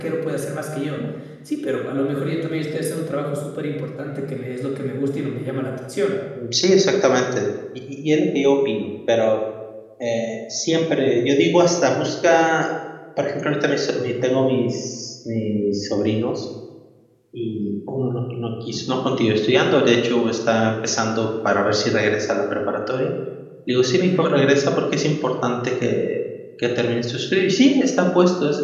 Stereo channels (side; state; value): both; identical; correlation 1.00